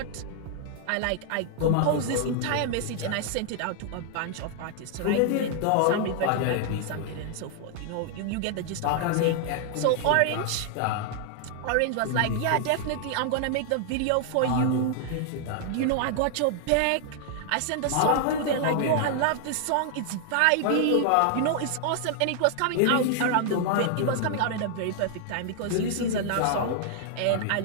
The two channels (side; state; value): both; different; correlation 0.00